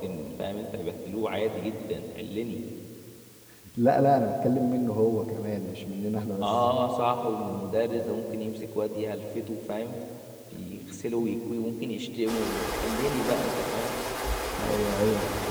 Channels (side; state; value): both; identical; correlation 1.00